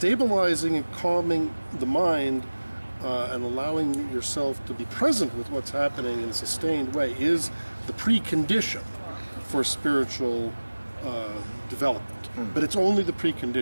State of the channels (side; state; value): both; inverted; correlation -1.00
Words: and calming the mind and allowing yourself to be present with what's happening in a sustained way is the precondition for spiritual development. But it's only the